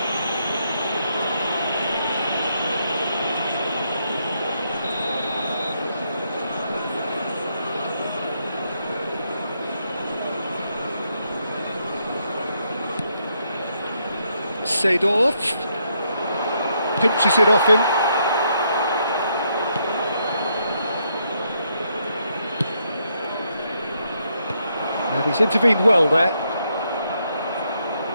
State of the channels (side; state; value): both; inverted; correlation -0.77